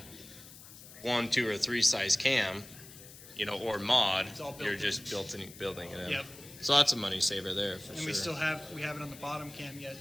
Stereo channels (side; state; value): left; noise; hiss, 17 dB below the sound